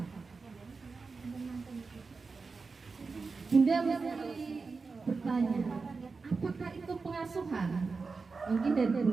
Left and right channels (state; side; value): quieter; left; 4.4 dB